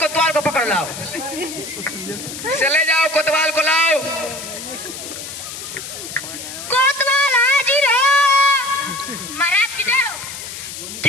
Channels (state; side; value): noise; left; hiss, 10 dB below the sound